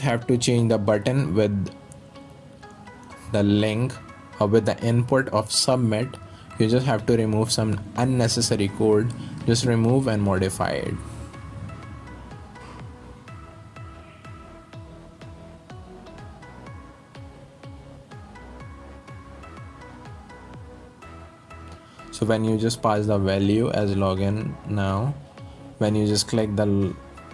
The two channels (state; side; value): identical; both; correlation 1.00